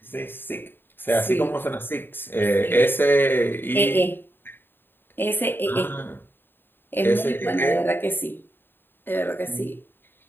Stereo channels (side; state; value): right; late; 0.098 ms